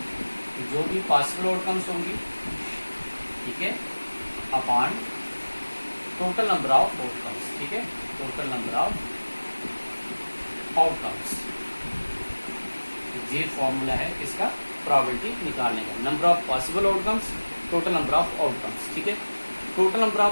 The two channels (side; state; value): both; inverted; correlation -1.00